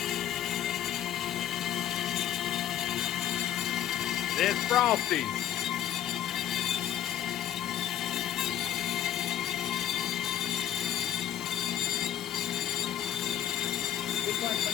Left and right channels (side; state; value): right; quieter; 10.9 dB